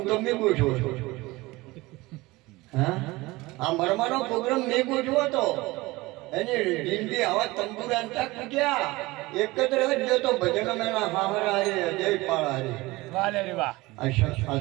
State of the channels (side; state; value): left; quieter; 21.0 dB